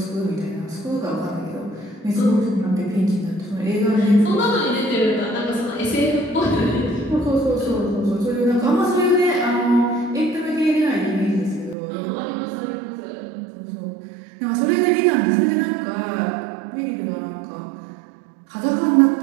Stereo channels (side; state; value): left; drops out; at 11.8 s